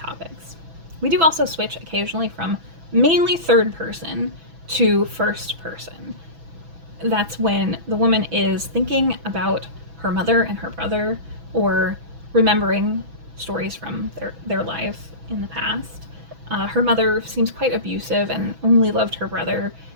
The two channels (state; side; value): late; left; 6.1 ms